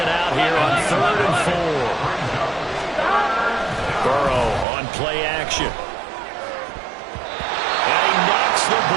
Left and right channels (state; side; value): drops out; left; at 4.7 s